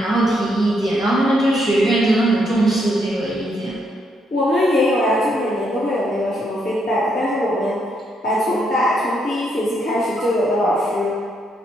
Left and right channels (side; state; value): both; normal; correlation 0.76